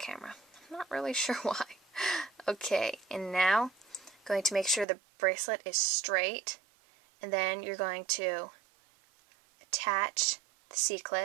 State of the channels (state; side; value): drops out; left; at 4.9 s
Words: I'm not really sure why. Okay, and now, I'm going to make sure the bracelet is straight, and then you're going to attach the